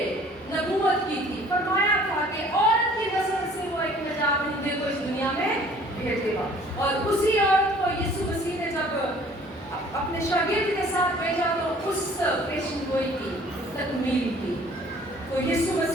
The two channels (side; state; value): both; normal; correlation 0.53